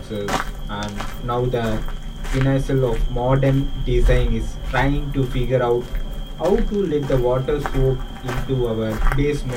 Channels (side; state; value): both; identical; correlation 1.00